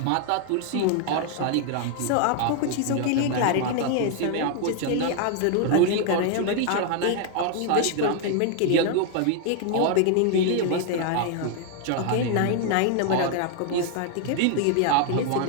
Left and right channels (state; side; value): different; both; correlation 0.00